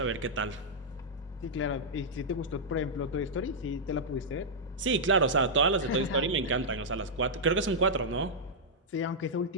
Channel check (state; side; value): normal; both; correlation -0.08